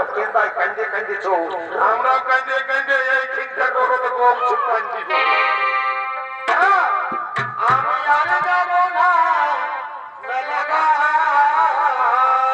কেন্দায় কান্দে কান্দে চো, আমরাও কান্দে কান্দে এই ঠিকটা করো তো গোপ ছুপান দিব। আমি আর যাব না মেলাগা।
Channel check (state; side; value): identical; both; correlation 1.00